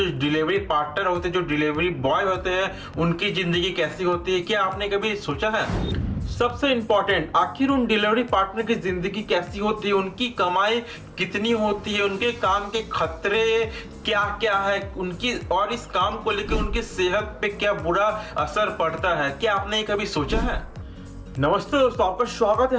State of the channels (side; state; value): both; identical; correlation 1.00